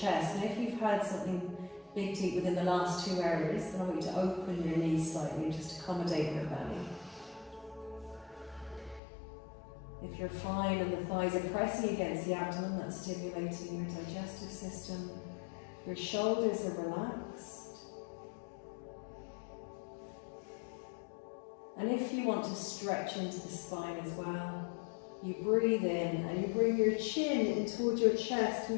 And if you've had something big to eat within the last 2 hours, then I want you to open your knees slightly and just accommodate your belly. If you're fine and the thighs are pressing against the abdomen, that's stimulating your digestive system. Your shoulders are relaxed. And if you want to stretch into the spine as well, you breathe in and you bring your chin in towards your chest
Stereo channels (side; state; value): right; drops out; at 9.0 s